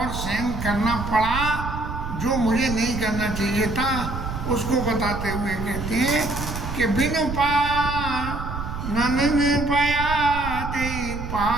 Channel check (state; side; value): noise; right; rumble, 6 dB below the sound